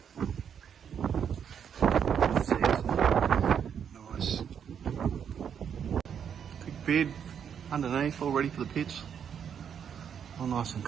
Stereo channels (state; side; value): quieter; left; 8.0 dB